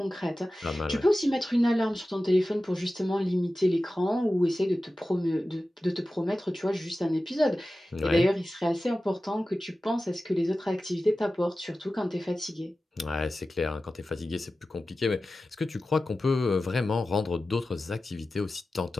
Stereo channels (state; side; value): normal; both; correlation 0.95